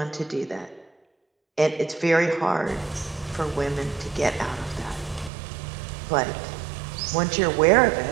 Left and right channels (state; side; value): drops out; left; at 5.3 s